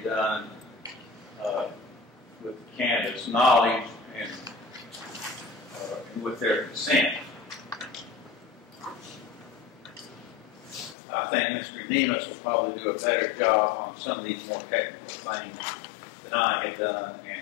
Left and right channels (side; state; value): right; drops out; at 11.0 s